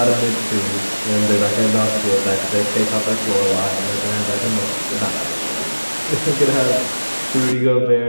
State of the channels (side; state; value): both; inverted; correlation -1.00